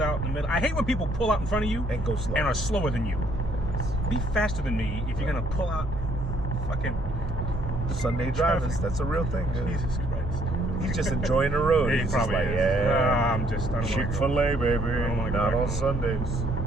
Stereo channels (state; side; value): normal; both; correlation 0.67